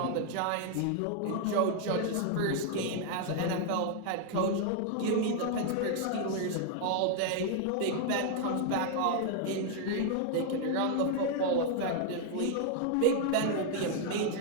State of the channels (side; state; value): both; different; correlation 0.00